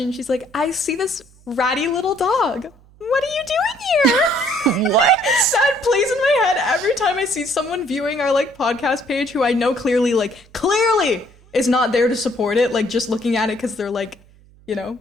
she's like, I see this ratty little dog. What are you doing here? What? That plays in my head every time I see someone viewing our like podcast page who I know clearly is not there to support it, like just looking at it because they're like, you know, and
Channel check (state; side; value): noise; right; hum, 27 dB below the sound